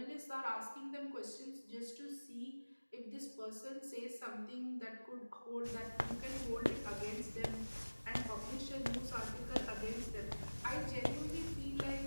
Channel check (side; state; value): both; inverted; correlation -1.00